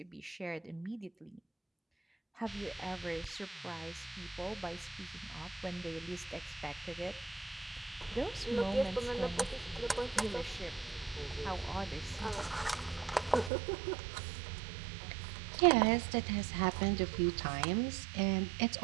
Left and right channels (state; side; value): drops out; left; at 13.5 s